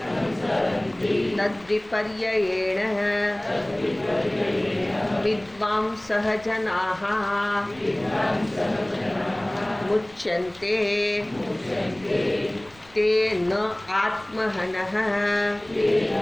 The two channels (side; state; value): left; noise; rumble, 26 dB below the sound